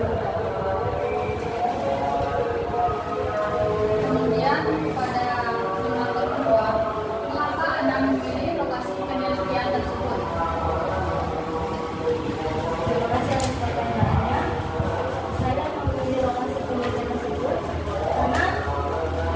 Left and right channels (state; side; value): identical; both; correlation 1.00